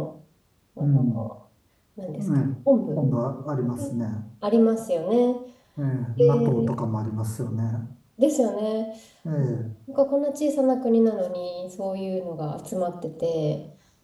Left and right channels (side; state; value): both; identical; correlation 1.00